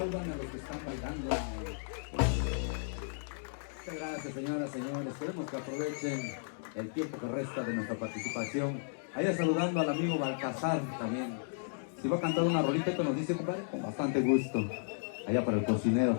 a los que están bailando. Muchas gracias, señoras, señores. Esperemos que aprovechen el tiempo que resta de nuestra participación. Allá saludando al amigo Balcazar también. Si va a cantar una rolita que nos dice, compadre, con bastante gusto. Allá para el cocinero.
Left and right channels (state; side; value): silent; right; digital silence